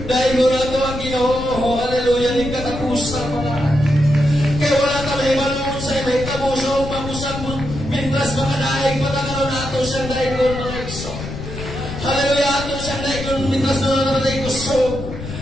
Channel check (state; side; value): noise; left; rumble, 8 dB below the sound